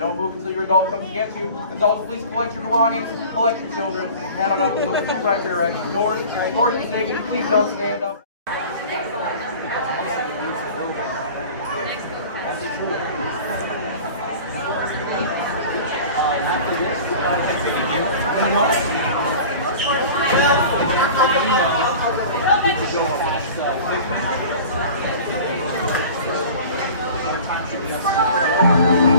move until your adult comes to get you. Adults, please collect your belongings, collect your children, head on up to those 2 right directions. Doors to safety, please don't stand up.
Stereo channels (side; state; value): both; inverted; correlation -0.40